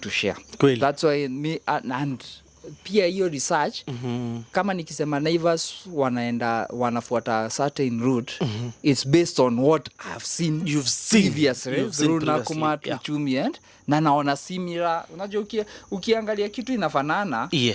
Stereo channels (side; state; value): both; identical; correlation 1.00